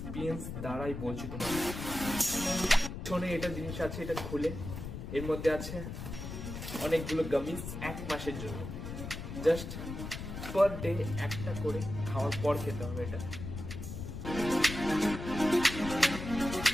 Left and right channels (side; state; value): left; noise; rumble, 7 dB below the sound